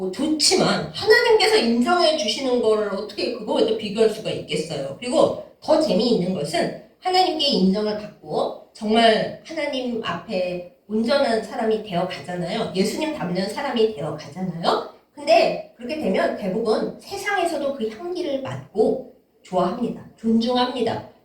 좋지만 하나님께서 인정해 주시는 거를 어떻게 그거에 비교할 수가 있겠어요. 그리고 더 재미있는 것은 하나님께 인정을 받고 정말 하나님 앞에 온전한 사람이 되어 가잖아요. 예수님 닮는 사람이 되어 가잖아요. 근데 그렇게 되면 대부분 세상에서도 그 향기를 맡고 좋아합니다. 존중합니다.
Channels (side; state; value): both; identical; correlation 1.00